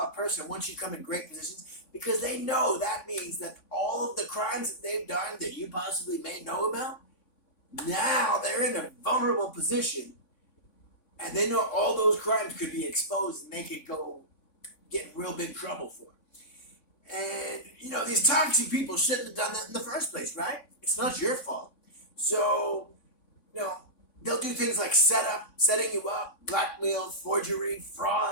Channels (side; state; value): right; late; 3.5 ms